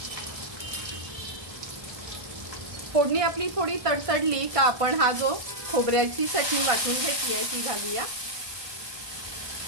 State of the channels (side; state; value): left; late; 1.5 ms